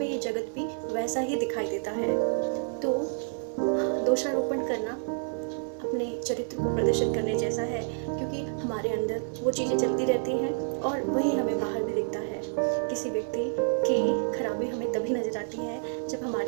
ये जगत भी वैसा ही दिखाई देता है। तो दोषारोपण करना अपने चरित्र को प्रदर्शित करने जैसा है, क्योंकि हमारे अंदर वो चीज़ें चलती रहती हैं और वही हमें बाहर भी दिखता है। किसी व्यक्ति की खराबी हमें तभी नजर आती है जब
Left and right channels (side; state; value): left; silent; 59 dB below the other